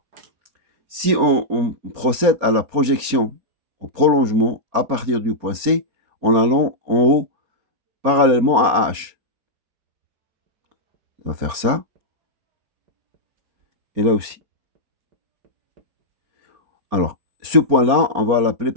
si on procède à la projection, au prolongement à partir du point C, en allant en haut parallèlement à H. On va faire ça. Et là aussi. Alors, ce point-là, on va l'appeler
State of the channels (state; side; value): late; left; 4.3 ms